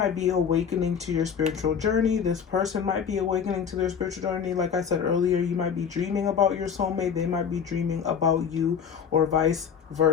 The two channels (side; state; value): right; quieter; 7.2 dB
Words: be awakening to your spiritual journey. This person might be awakening to their spiritual journey. Like I said earlier, you might be dreaming about your soulmate. They might be dreaming about you, or vice